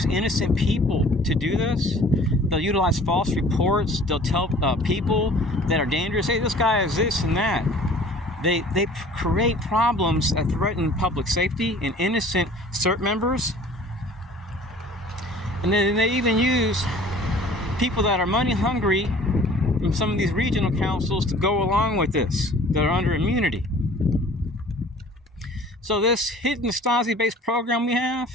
innocent people to do this. They'll utilize false reports. They'll tell people that are dangerous, hey, this guy is this and that. They create problems that threaten public safety and innocent CERT members. And then they even use people that are money hungry from some of these regional councils to go along with this, that are under immunity. So this hidden Stasi-based program we have,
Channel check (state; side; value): normal; both; correlation 0.49